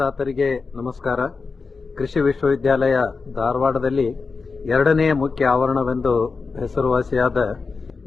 ನಮಸ್ಕಾರ. ಕೃಷಿ ವಿಶ್ವವಿದ್ಯಾಲಯ ಧಾರವಾಡದಲ್ಲಿ ಎರಡನೇ ಮುಖ್ಯ ಆವರಣವೆಂದು ಹೆಸರುವಾಸಿಯಾದ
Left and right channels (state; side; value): quieter; right; 4.5 dB